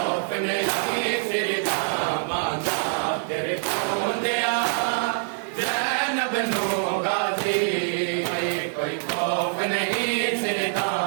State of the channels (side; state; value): left; silent; digital silence